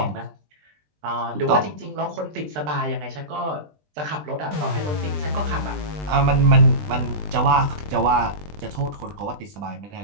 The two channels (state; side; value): late; left; 20 ms